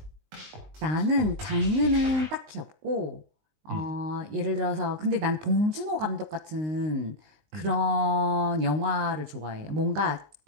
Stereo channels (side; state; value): left; late; 19 ms